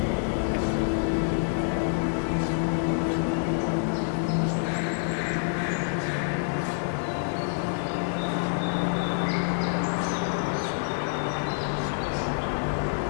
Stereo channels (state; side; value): silent; right; digital silence